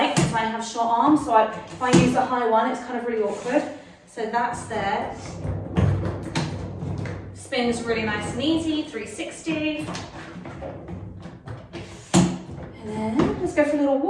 because I have short arms, so if I use the high one, it's kind of really awkward. So that's there. Spins really nice and easy, 360. And then let's go for a little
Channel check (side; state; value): both; identical; correlation 1.00